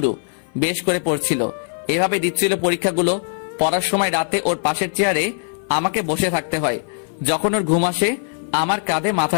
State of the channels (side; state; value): right; silent; 57 dB below the other